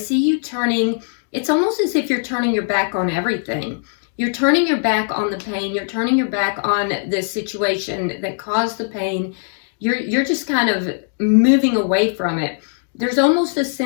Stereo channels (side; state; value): right; silent; digital silence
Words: you turning, it's almost as if you're turning your back on everything. You're turning your back on the pain. You're turning your back on the situation that caused the pain. You're just kind of moving away from it. There's almost a